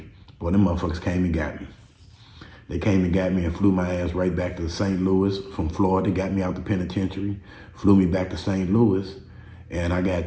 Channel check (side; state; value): both; identical; correlation 1.00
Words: Boy, them motherfuckers came and got me. They came and got me and flew my ass right back to St. Louis from Florida, got me out the penitentiary, flew me back to St. Louis, and I got